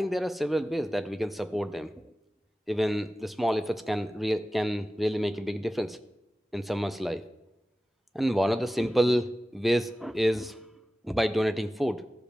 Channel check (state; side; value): normal; both; correlation 0.96